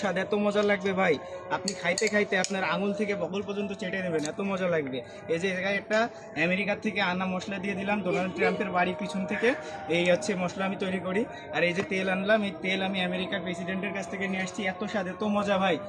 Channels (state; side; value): identical; both; correlation 1.00